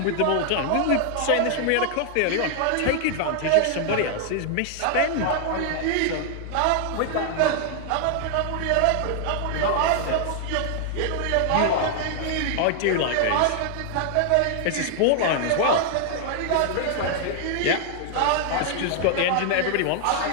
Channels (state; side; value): different; both; correlation 0.00